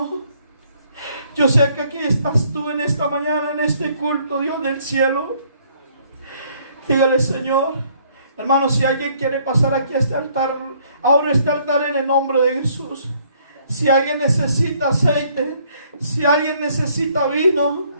Yo sé que aquí estás tú en esta mañana, en este culto, Dios del cielo. Dígale, Señor, hermano, si alguien quiere pasar aquí a este altar, ahora este altar en el nombre de Jesús. Si alguien necesita aceite, si alguien necesita vino,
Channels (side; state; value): both; inverted; correlation -0.64